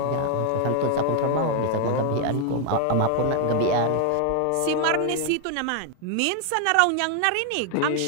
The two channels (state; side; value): different; both; correlation 0.00